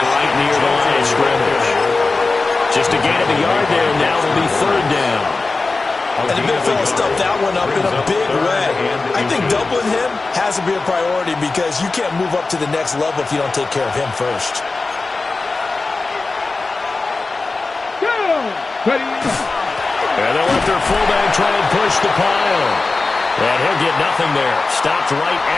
right near the line of scrimmage. Just a gain of a yard there. Now will be third down. And the big fella stuffed that one up in a big way. I think doubling him has to be a priority because you can't move up to the next level if you don't take care of him first. And they'll let their fullback try and push the pile. And he'll get nothing there. Stopped right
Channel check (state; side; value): quieter; right; 3.7 dB